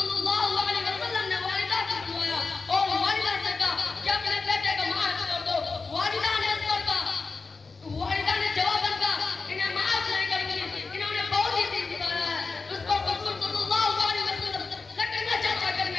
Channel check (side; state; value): right; quieter; 4.3 dB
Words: اللہ علیہ وسلم نے والدہ کو بلایا اور والدہ سے کہا کہ اپنے بیٹے کو معاف کر دو. والدہ نے اس پر کہا، والدہ نے جواب دیا انہیں معاف نہیں کروں گی، انہوں نے بہت ہی دل دکھایا ہے. اس پر حضور صلی اللہ علیہ وسلم لکڑیاں چرچا